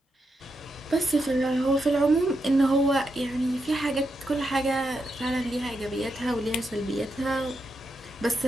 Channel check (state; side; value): normal; both; correlation 0.84